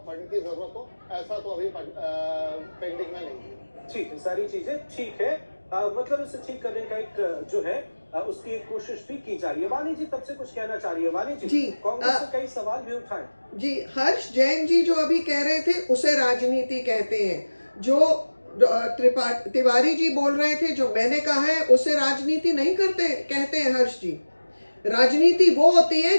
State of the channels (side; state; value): both; inverted; correlation -1.00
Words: की जरूरत हो, ऐसा तो अभी पेंडिंग में नहीं। ठीक है, सारी चीजें ठीक है। मतलब इसे ठीक करने का एक जो है उसकी एक कोशिश भी की जा रही है। वाणी जी तब से कुछ कहना चाह रही है। वाणी जी, जी, कांग्रेस से कई सवाल भी उठाए। जी, हर्ष जैन जी जो अभी कह रहे थे उसे राजनीति कहते हैं। जो तिवारी जी बोल रहे थे, जो मैंने कहा है, उसे राजनीति नहीं कहते हैं हर्ष जी। राजनीति वो होती है